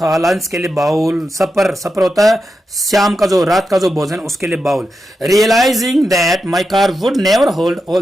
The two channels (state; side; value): normal; both; correlation 0.88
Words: लंच के लिए बाउल, सपर होता है शाम का जो रात का जो भोजन उसके लिए bowl. Realising that my car would never hold